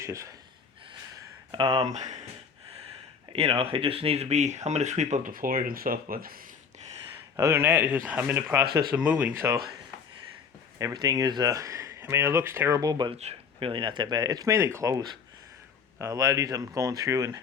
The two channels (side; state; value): right; quieter; 6.2 dB